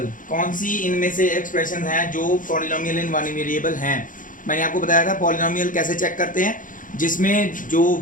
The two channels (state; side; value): late; right; 0.39 ms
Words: कौन सी इनमें से एक्सप्रेशन हैं जो पॉलिनोमियल इन 1 वेरिएबल हैं। मैंने आपको बताया था पॉलिनोमियल कैसे चेक करते हैं, जिसमें जो